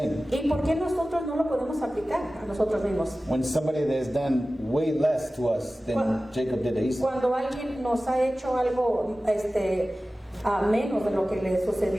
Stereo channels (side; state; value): both; normal; correlation 0.96